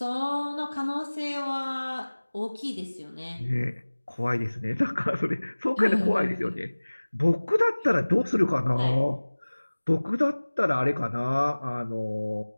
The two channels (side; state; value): both; inverted; correlation -1.00